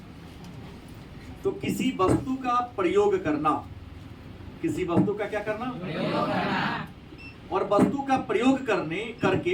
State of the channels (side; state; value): both; identical; correlation 1.00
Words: तो किसी वस्तु का प्रयोग करना, किसी वस्तु का क्या करना? प्रयोग करना। और वस्तु का प्रयोग